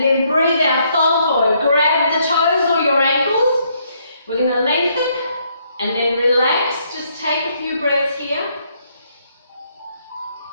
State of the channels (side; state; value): both; inverted; correlation -0.71